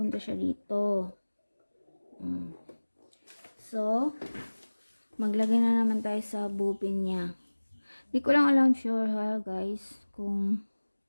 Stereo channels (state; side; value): inverted; both; correlation -1.00